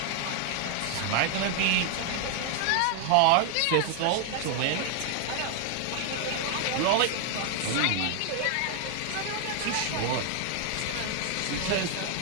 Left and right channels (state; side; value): different; both; correlation 0.00